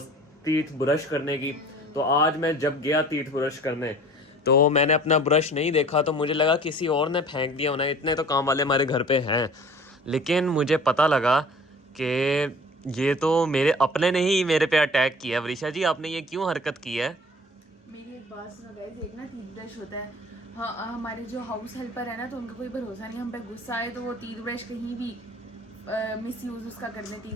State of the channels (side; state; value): both; normal; correlation 0.46